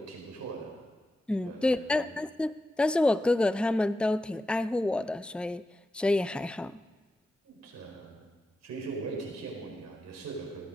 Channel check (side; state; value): both; normal; correlation 0.90